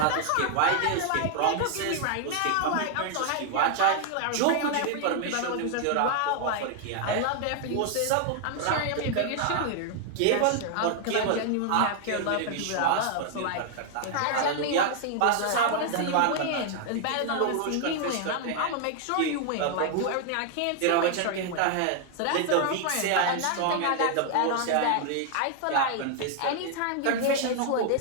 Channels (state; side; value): different; both; correlation 0.00